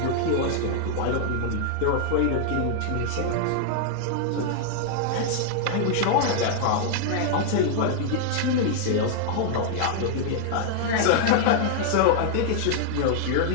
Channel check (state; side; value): different; both; correlation -0.01